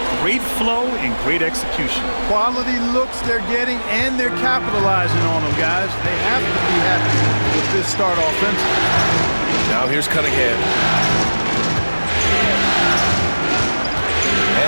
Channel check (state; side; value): inverted; both; correlation -1.00